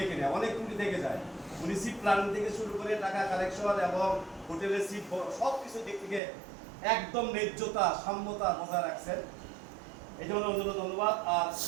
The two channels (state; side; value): drops out; left; at 6.2 s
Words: না, অনেক ট্যুরই দেখে যায়। উনি সিট প্ল্যানিং থেকে শুরু করে টাকা কালেকশন এবং হোটেলের সিট সব কিছু দিক থেকে একদম ন্যায্যতা সাম্যতা বজায় রাখছেন, এই জন্য অন্যান্য ধন্যবাদ। আর